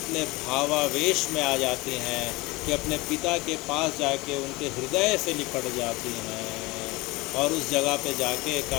भावावेश में आ जाती हैं कि अपने पिता के पास जाके उनके हृदय से लिपट जाती हैं और उस जगह पे जाके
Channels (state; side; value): quieter; right; 22.9 dB